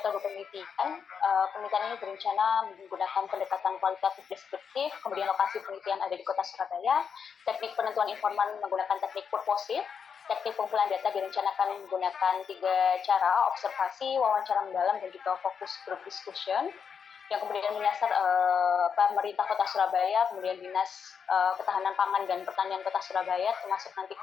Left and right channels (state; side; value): quieter; right; 6.7 dB